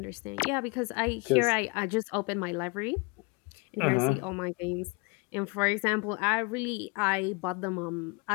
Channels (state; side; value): quieter; right; 28.3 dB